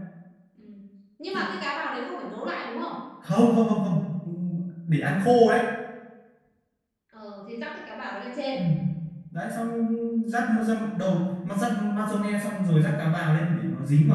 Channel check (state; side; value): identical; both; correlation 1.00